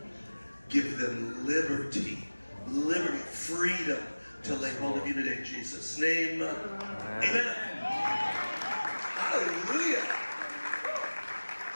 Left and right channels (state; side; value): inverted; both; correlation -1.00